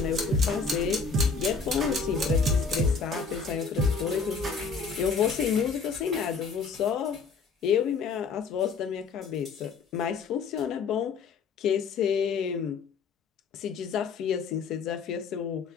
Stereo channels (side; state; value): right; quieter; 5.1 dB